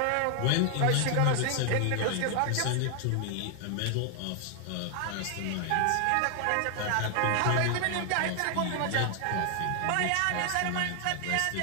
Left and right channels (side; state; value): both; different; correlation 0.00